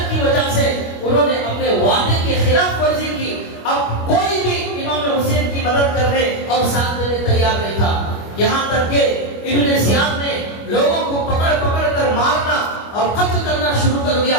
کی وجہ سے انہوں نے اپنے وعدے کی خلاف ورزی کی۔ اب کوئی بھی امام حسین کی مدد کرنے اور ساتھ دینے تیار نہیں تھا، یہاں تک کہ ابن زیاد نے لوگوں کو پکڑ کر مارنا اور قتل کرنا شروع کر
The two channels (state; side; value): late; right; 25 ms